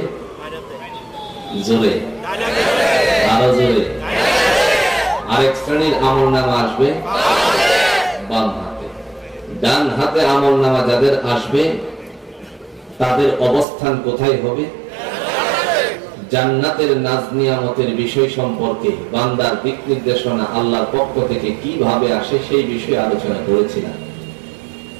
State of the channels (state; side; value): drops out; left; at 13.7 s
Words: জোরে, আরো জোরে, আরেক শ্রেণীর আমলনামা আসবে বাম হাতে। ডান হাতে আমলনামা যাদের আসবে তাদের অবস্থান কোথায় হবে? জান্নাতের নাজ নিয়ামতের বিষয় সম্পর্কে বান্দার দিক নির্দেশনা আল্লাহর পক্ষ থেকে কিভাবে আসে সেই বিষয়ে আলোচনা করেছিলাম।